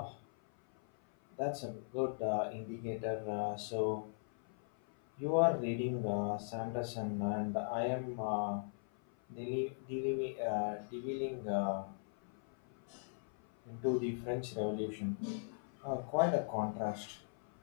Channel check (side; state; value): right; silent; 52 dB below the other